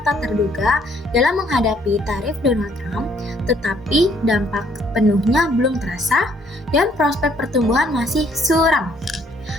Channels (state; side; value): normal; both; correlation 0.65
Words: tak terduga dalam menghadapi tarif Donald Trump, tetapi dampak penuhnya belum terasa dan prospek pertumbuhan masih suram.